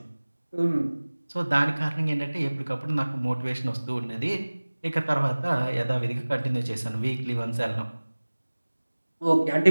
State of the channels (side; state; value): both; inverted; correlation -1.00